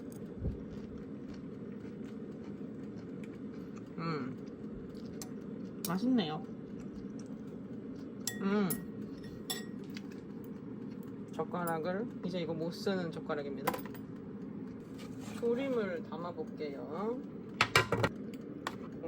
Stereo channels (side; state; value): both; identical; correlation 1.00